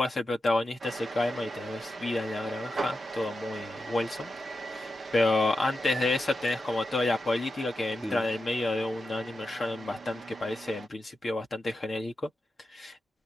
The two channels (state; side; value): normal; both; correlation 0.90